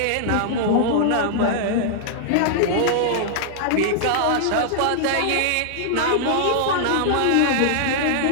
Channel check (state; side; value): different; both; correlation -0.01